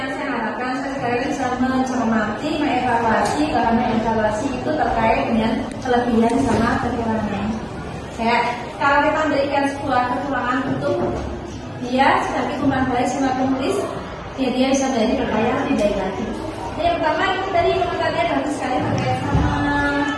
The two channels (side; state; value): both; identical; correlation 1.00